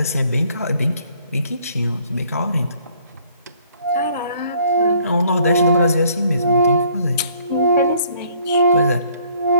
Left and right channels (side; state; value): both; inverted; correlation -0.61